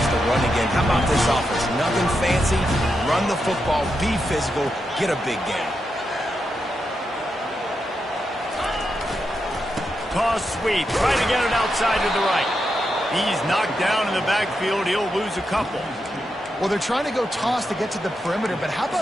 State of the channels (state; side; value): normal; both; correlation 0.86